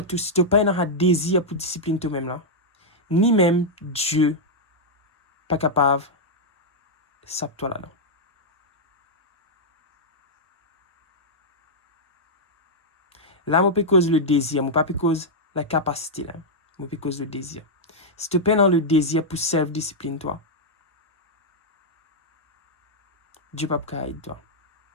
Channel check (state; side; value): normal; both; correlation -0.06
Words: si tu n'as pas un désir pour discipline toi-même, là, ni même Dieu pas capable de saper toi là-dedans. Là, je peux cause le désir, je ne peux pas cause la capacité, là. Je peux cause le désir. Si tu peines dans le désir pour self-discipline, toi, Dieu ne peut pas aider toi.